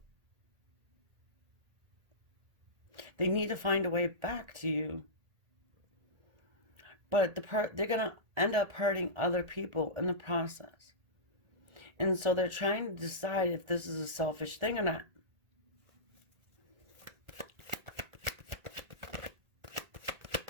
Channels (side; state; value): left; late; 1.4 ms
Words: They need to find a way back to you. But they're going to end up hurting other people in the process. And so they're trying to decide if this is a selfish thing or not.